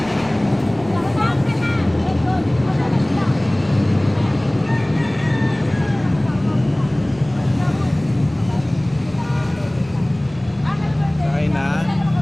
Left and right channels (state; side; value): noise; left; rumble, 25 dB below the sound